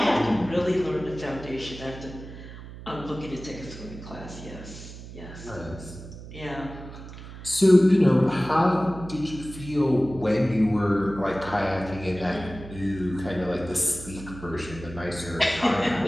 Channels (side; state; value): right; noise; hum, 14 dB below the sound